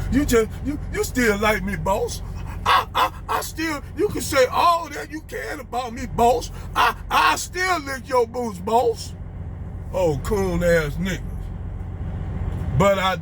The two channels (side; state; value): both; identical; correlation 1.00